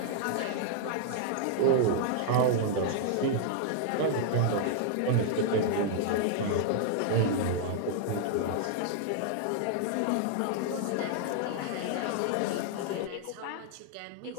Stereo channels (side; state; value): both; different; correlation -0.01